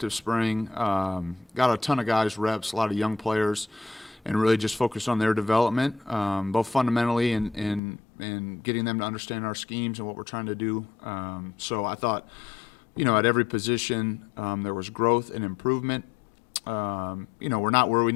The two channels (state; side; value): drops out; right; at 7.8 s